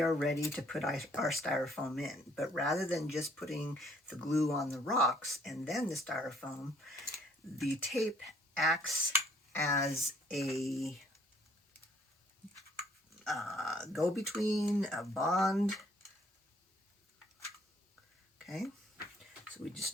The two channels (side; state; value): both; normal; correlation 0.62